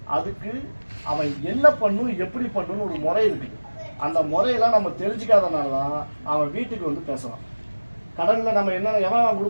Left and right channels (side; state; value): both; inverted; correlation -1.00